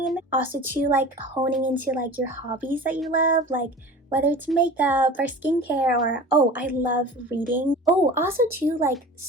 Also too, like honing into like your hobbies that you love, like whether it's makeup or skincare, or oh, I love reading. Oh, also too, like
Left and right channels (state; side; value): normal; both; correlation 0.39